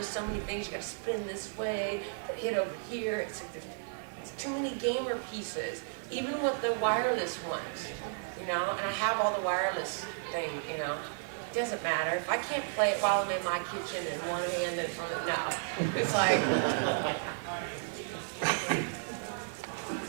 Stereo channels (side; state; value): left; silent; digital silence